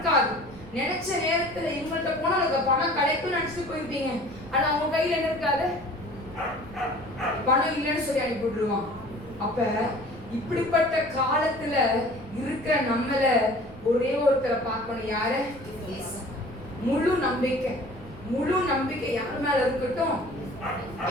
நினைச்ச நேரத்துல இவங்கள்ட்ட போனா அதுக்கு பணம் கிடைக்கும்னு நினைச்சிட்டு போயிருப்பீங்க, ஆனா அவங்க கையில என்ன இருக்காது, பணம் இல்லைன்னு சொல்லி அனுப்பி விட்டுருவான். அப்ப இப்படிப்பட்ட காலத்துல இருக்கிற நம்மள ஒரே ஒருத்தரை பார்க்கணும். யாரு? முழு நம்பிக்கை, முழு நம்பிக்கை யார் மேல இருக்கட்டும்?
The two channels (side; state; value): right; noise; rumble, 19 dB below the sound